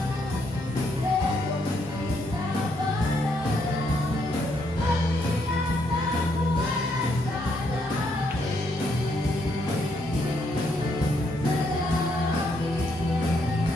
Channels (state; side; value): normal; both; correlation 0.74